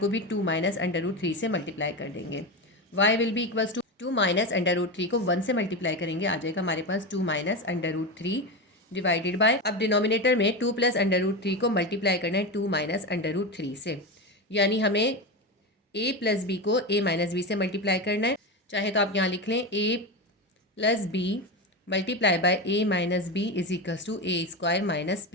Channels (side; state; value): both; normal; correlation 0.18